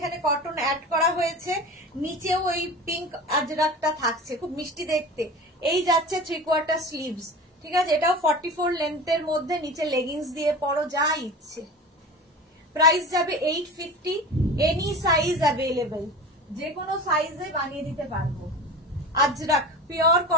কটন অ্যাড করা হয়েছে, নিচেও ওই পিঙ্ক আজরাকটা থাকছে, খুব মিষ্টি দেখতে। এই যাচ্ছে 3/4 স্লিভস, ঠিক আছে। এটাও 44 লেন্থের মধ্যে, নিচে লেগিংস দিয়ে পরো, যা ইচ্ছে। প্রাইস যাবে 850। এনি সাইজ অ্যাভেলেবেল, যে কোনো সাইজে বানিয়ে দিতে পারবো। আজরাক, পিওর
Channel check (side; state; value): both; normal; correlation 0.33